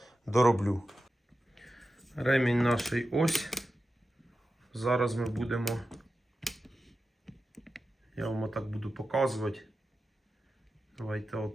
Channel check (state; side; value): normal; both; correlation 0.92